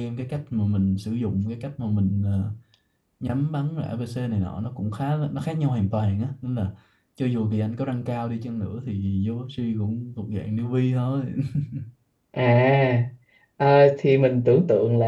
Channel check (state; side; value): identical; both; correlation 1.00